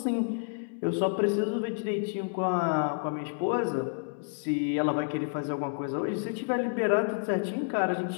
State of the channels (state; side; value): silent; right; 58 dB below the other